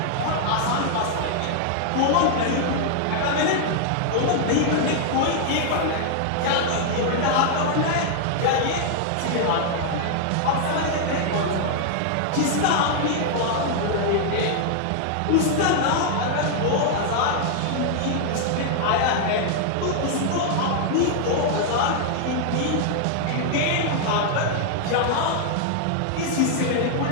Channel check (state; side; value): different; both; correlation 0.00